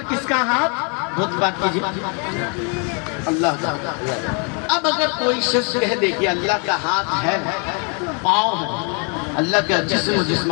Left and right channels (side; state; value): right; quieter; 37.1 dB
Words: کس کا ہاتھ, بہت بات کیجئے اللہ کا. اب اگر کوئی شخص کہہ دے کہ اللہ کا ہاتھ ہے, پاؤں ہے, اللہ کا جسم و